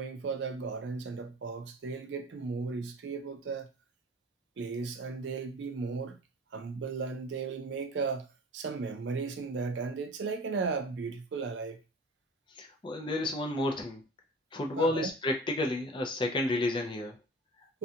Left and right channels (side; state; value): both; normal; correlation 0.40